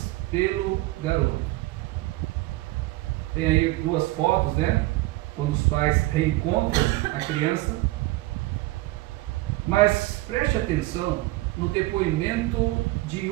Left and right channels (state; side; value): quieter; left; 19.2 dB